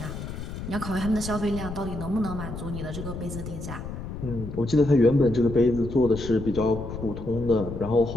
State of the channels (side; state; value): left; noise; rumble, 8 dB below the sound